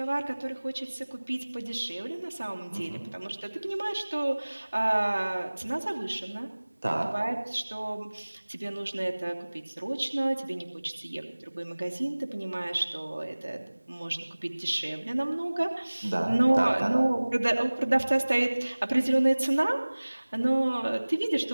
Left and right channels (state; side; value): inverted; both; correlation -1.00